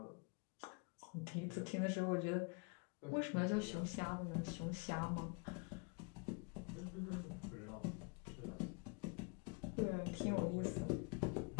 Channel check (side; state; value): right; quieter; 32.6 dB